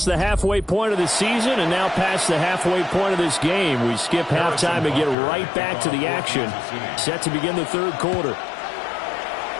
the halfway point of the season and now past the halfway point of this game. We skip halftime and get right back to the action. Set to begin the third quarter.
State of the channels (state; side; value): drops out; right; at 5.2 s